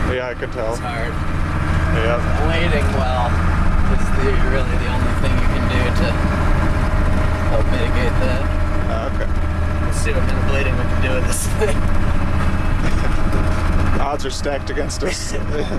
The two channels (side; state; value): both; identical; correlation 1.00